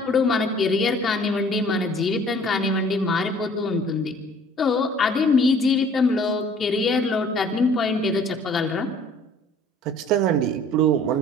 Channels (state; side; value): normal; both; correlation 0.53